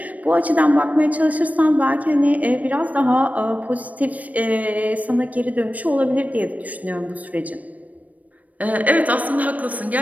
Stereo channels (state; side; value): late; left; 0.072 ms